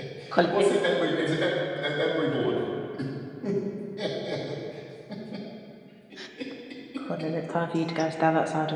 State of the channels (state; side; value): identical; both; correlation 1.00